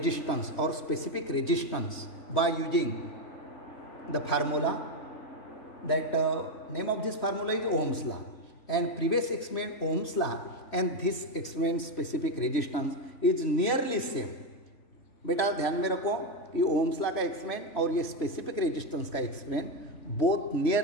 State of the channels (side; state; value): right; late; 3.1 ms